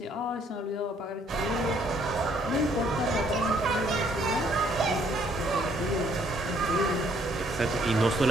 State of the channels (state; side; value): normal; both; correlation 0.66